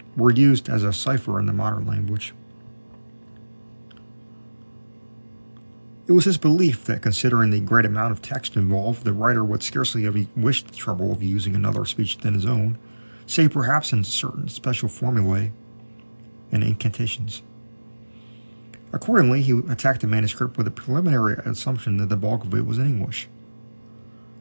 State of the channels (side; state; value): both; inverted; correlation -1.00